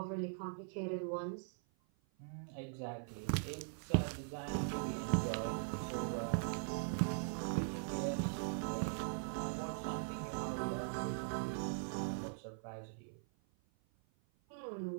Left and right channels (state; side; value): silent; left; 50 dB below the other